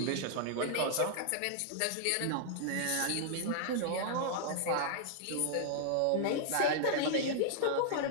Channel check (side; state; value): both; different; correlation -0.01